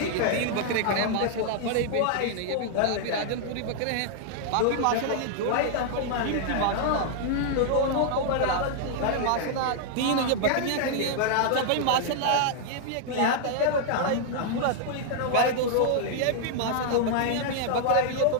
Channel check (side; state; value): both; different; correlation -0.01